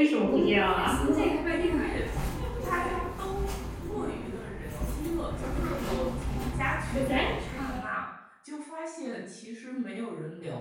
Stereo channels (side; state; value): both; identical; correlation 1.00